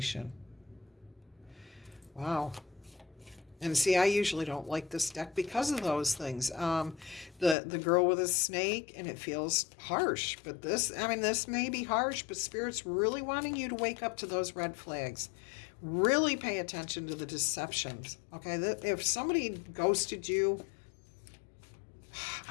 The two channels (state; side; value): drops out; right; at 7.6 s